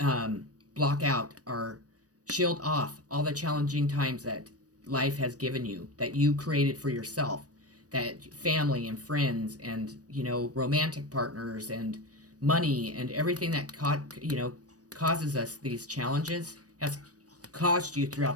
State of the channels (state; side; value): late; left; 0.67 ms